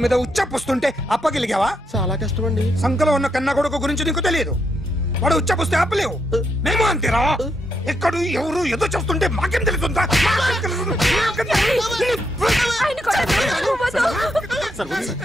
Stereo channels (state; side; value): normal; both; correlation 0.79